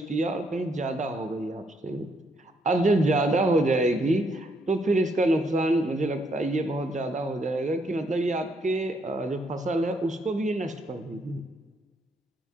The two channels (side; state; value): both; normal; correlation 0.73